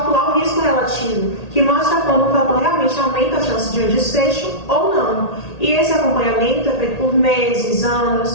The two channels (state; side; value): late; right; 1.8 ms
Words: o risco relativo, que mostra quando o fator realmente aumenta a chance de um desfecho ou não. E esse acompanhamento é feito por meses,